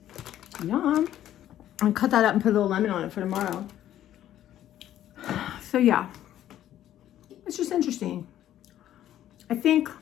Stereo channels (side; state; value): right; quieter; 12.1 dB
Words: Yum. I'll cut that up and put a little lemon on it for tomorrow. So yeah, it's just interesting. I think,